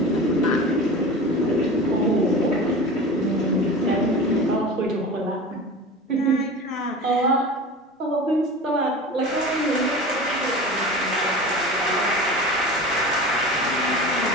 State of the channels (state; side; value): normal; both; correlation 0.34